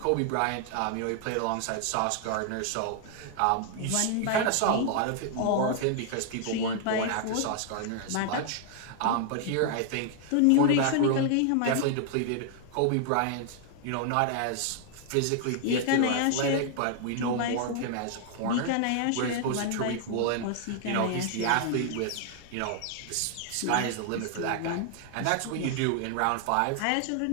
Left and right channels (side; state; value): both; different; correlation 0.00